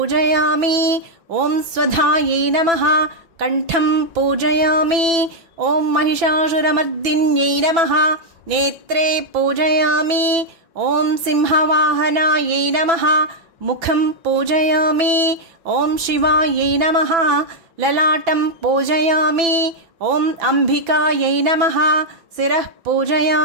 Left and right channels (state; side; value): late; left; 6.0 ms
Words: ఓం స్వధాయై నమః కంఠం పూజయామి. ఓం మహిషాసురమర్దిన్యై నమః నేత్రే పూజయామి. ఓం సింహవాహనాయై నమః ముఖం పూజయామి. ఓం శివాయై నమః లలాటం పూజయామి. ఓం అంబికాయై నమః శిరః